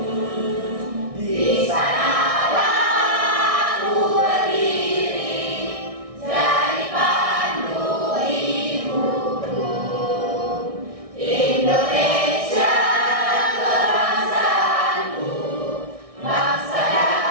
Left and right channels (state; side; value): late; left; 1.6 ms